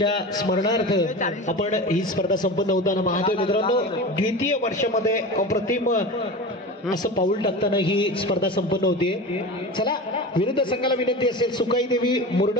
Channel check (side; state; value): both; normal; correlation 0.30